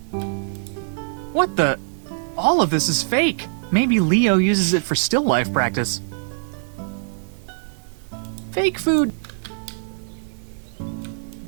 What the? All of this is fake. Maybe Leo uses it for still life practice. Fake food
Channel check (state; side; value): silent; left; digital silence